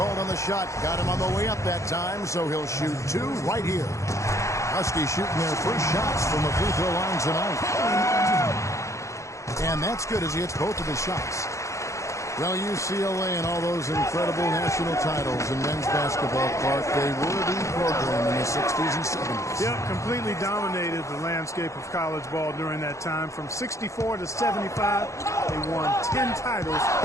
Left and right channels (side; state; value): right; late; 0.15 ms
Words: on the shot. Got him on the way up that time, so he'll shoot 2 right here. Huskies shooting their first shots from the free throw line tonight. And that's good as he hits both of his shots. Well, UCLA and all those incredible national titles in men's basketball, Clark, they were the program in the 60s and 70s. Yeah, completely dominated the landscape of college ball during that time. From 64 to 75, they won 10 titles